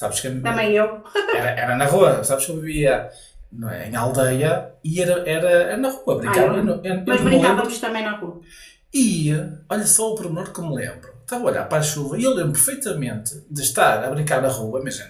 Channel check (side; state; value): both; identical; correlation 1.00